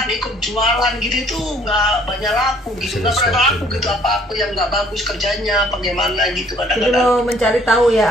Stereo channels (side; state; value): both; normal; correlation 0.59